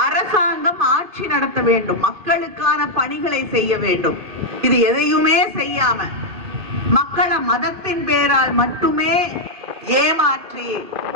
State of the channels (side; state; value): left; late; 2.6 ms